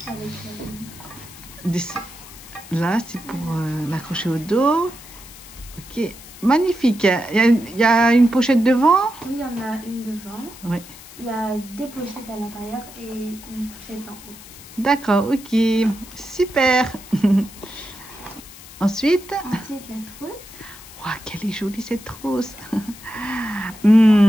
Avec, là, c'est pour l'accrocher au dos. Ok, magnifique. Il y a une pochette devant. oui, il y en a une devant. Oui. Il y a deux pochettes à l'intérieur et une pochette en haut. D'accord, ok. Super. Ensuite, Ensuite, la trousse. wow, quelle est jolie cette trousse.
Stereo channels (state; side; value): noise; left; hiss, 18 dB below the sound